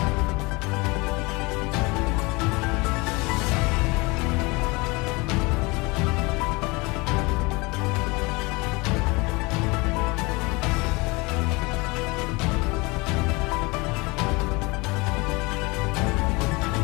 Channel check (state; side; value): quieter; right; 25.5 dB